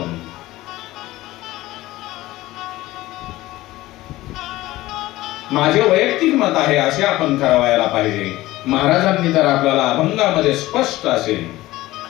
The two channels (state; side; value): quieter; right; 17.4 dB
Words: माझे वैयक्तिक मत आहे असे आपण करावायला पाहिजे. महाराजांनी तर आपल्याला अभंगामध्ये स्पष्ट असे